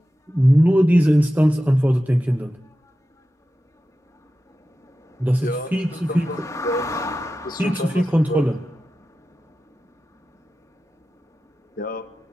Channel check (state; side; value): normal; both; correlation 0.93